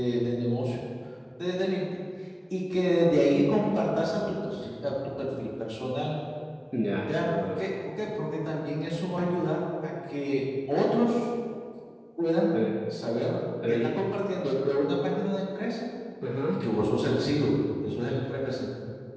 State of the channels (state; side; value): identical; both; correlation 1.00